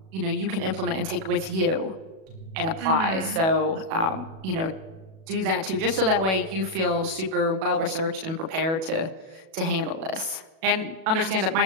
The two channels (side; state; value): left; late; 37 ms